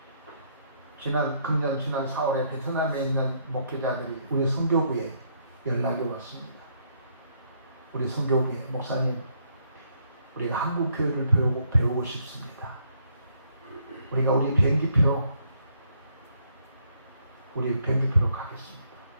그렇습니다. 금년 지난 4월에 베트남에 있는 목회자들이 우리 선교부에 연락이 왔습니다. 우리 선교부에 목사님, 우리가 한국 교회를 배우고 싶습니다. 우리가 우리 비행기표로 가겠습니다.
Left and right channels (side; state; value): both; inverted; correlation -0.70